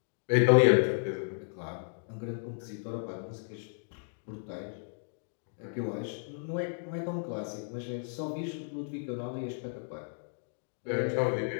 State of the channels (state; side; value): silent; right; digital silence